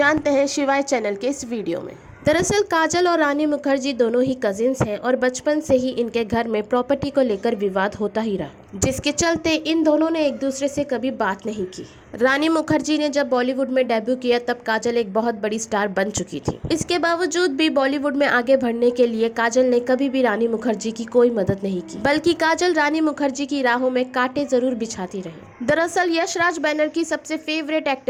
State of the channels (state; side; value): identical; both; correlation 1.00